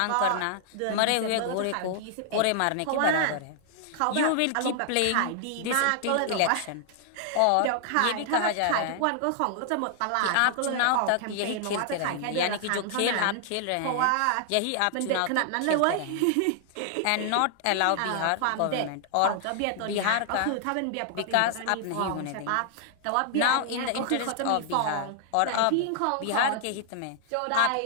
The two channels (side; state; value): both; different; correlation -0.01